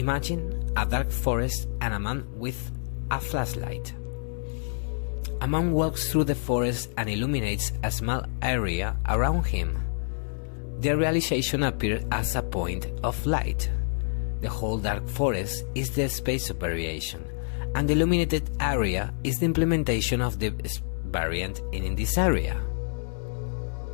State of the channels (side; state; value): right; silent; digital silence